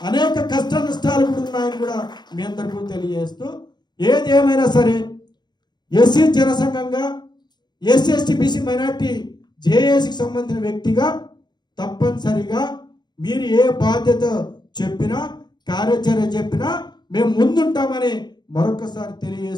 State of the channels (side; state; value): right; late; 0.21 ms